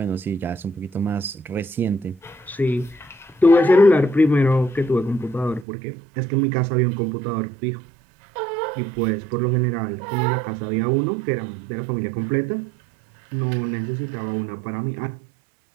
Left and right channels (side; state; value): left; drops out; at 5.7 s